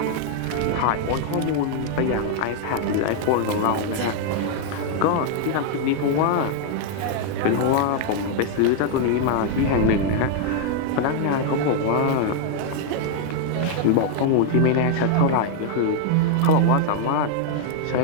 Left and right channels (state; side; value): different; both; correlation 0.00